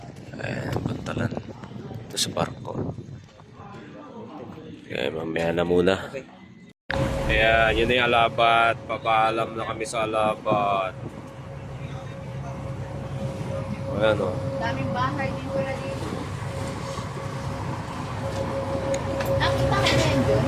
Ayan, Pantalan. Ito sa barko. Okay, mamaya na muna. Ayan, yun na yung Alabat. Papaalam na kami sa Alabat. Ayan o. Daming bahay dito na dito. Nakita ka na yan dun?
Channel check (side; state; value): both; identical; correlation 1.00